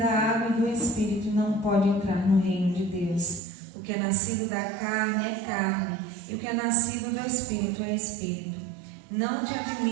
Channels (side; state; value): left; drops out; at 3.4 s